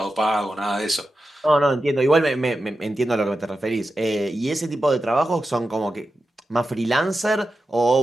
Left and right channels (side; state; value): both; normal; correlation 0.91